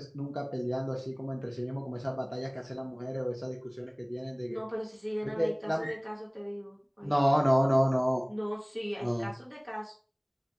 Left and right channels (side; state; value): both; identical; correlation 1.00